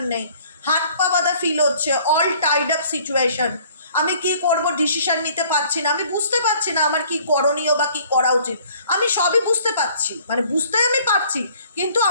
নেই। হাত পা বাঁধা ফিল হচ্ছে, অল টাইড আপ সিচুয়েশন। আমি কি করব ডিসিশন নিতে পারছি না, আমি বুঝতে পারছি না আমার কি করণীয় বা কি করা উচিত। আমি সবই বুঝতে পারছি, মানে বুঝতে আমি পারছি, কিন্তু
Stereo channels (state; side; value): inverted; both; correlation -0.56